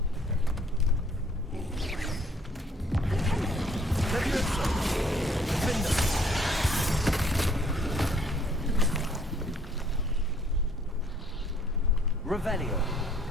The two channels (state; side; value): normal; both; correlation 0.60